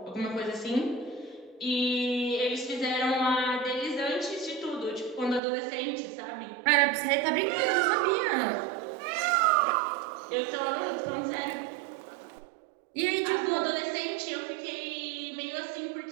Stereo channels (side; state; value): left; drops out; at 5.4 s